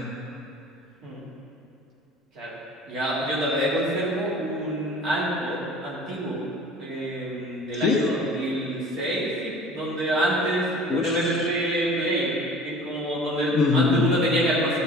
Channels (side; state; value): both; normal; correlation 0.45